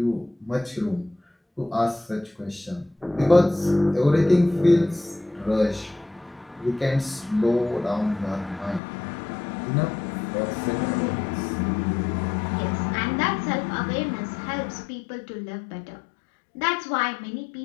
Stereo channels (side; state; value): right; drops out; at 8.8 s